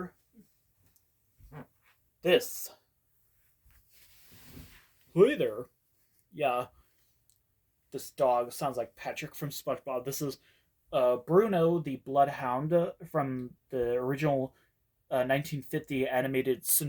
this. Hey there. Yeah, this dog sounds like Patrick from SpongeBob. This is Bruno the Bloodhound from the original 1950 animated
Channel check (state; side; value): identical; both; correlation 1.00